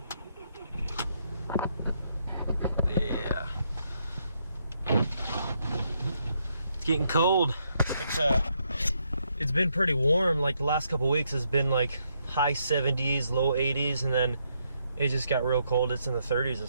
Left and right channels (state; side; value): inverted; both; correlation -0.77